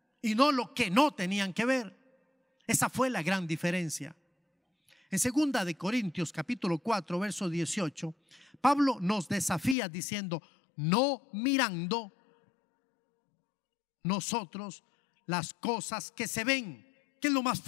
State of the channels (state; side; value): drops out; right; at 9.8 s